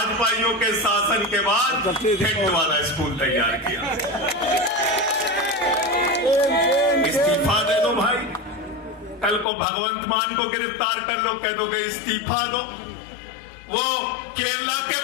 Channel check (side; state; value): right; drops out; at 9.5 s